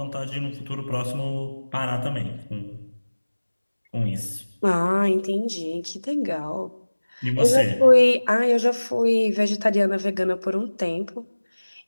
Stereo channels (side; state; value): both; inverted; correlation -1.00